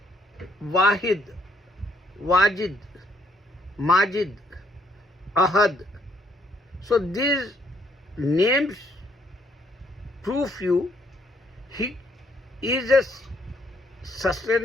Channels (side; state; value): both; normal; correlation 0.68